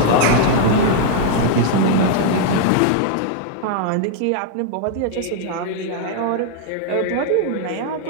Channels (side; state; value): both; different; correlation 0.00